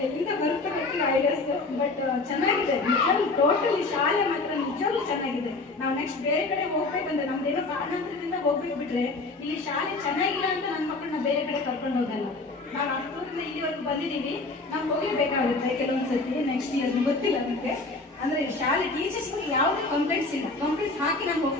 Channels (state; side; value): quieter; right; 3.4 dB